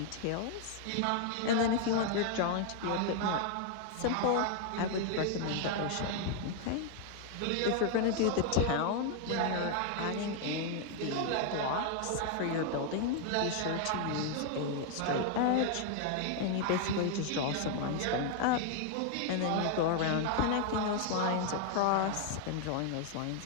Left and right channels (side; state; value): both; different; correlation 0.00